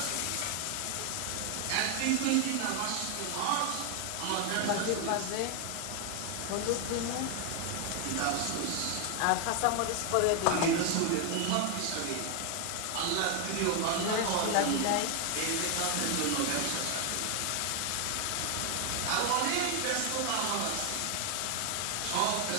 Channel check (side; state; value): both; different; correlation 0.00